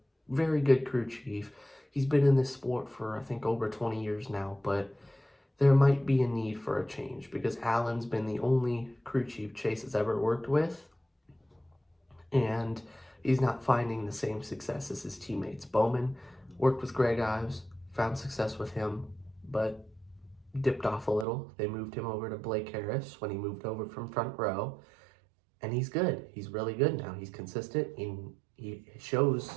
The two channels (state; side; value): drops out; left; at 21.2 s